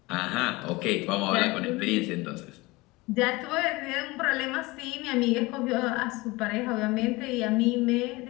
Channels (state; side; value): quieter; right; 22.4 dB